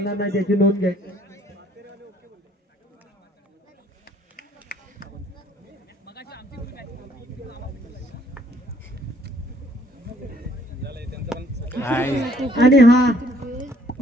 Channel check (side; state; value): both; normal; correlation 0.62